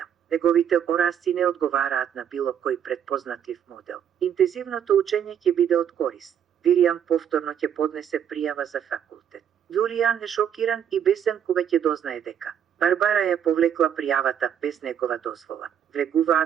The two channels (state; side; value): quieter; left; 8.9 dB